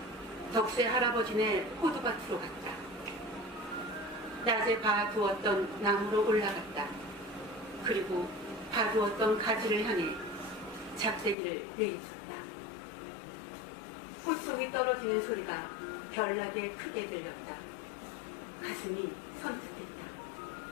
덕세 할아버지네 호두밭으로 갔다. 낮에 봐두었던 나무로 올라갔다. 그리고 봐두었던 가지를 향해 작대기를 내리쳤다. 꽃송이 떨어지는 소리가 별나게 크게 들렸다. 가슴이 선뜻했다.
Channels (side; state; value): right; drops out; at 11.4 s